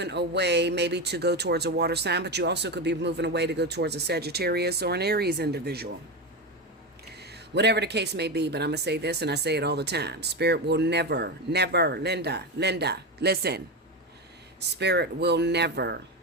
away maybe to go towards a water sign, but you also could be moving away to go towards a Sagittarius or an Aries individual. Whatever the case may be, but I'm going to say this, and I say it all the time. Spirit will never, Linda, listen. Spirit will never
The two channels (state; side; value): normal; both; correlation 0.16